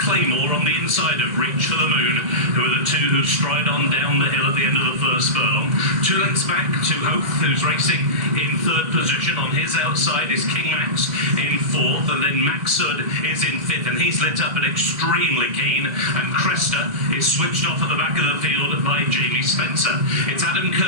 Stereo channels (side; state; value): left; late; 2.0 ms